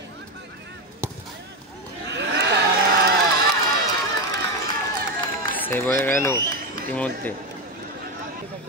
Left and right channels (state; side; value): normal; both; correlation 0.12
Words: সেভ হয়ে গেল ইতিমধ্যে।